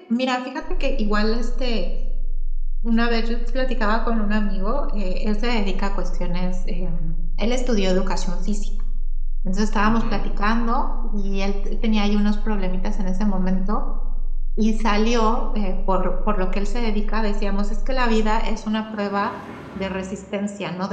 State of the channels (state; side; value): identical; both; correlation 1.00